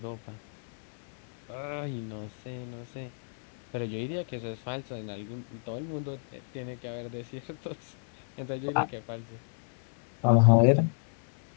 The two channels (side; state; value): right; silent; 56 dB below the other